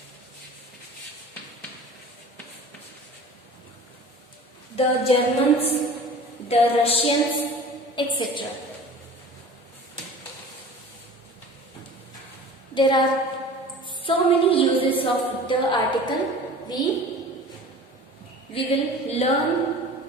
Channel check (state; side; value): normal; both; correlation 0.41